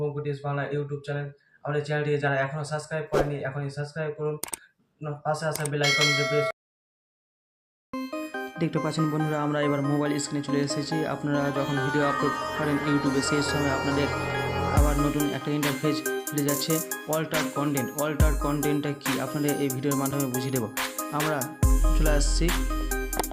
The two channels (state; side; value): identical; both; correlation 1.00